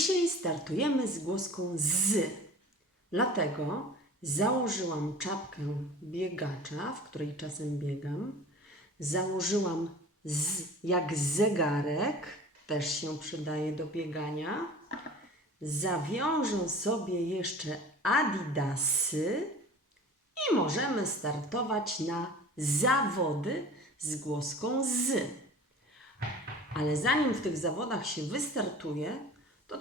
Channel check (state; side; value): normal; both; correlation 0.41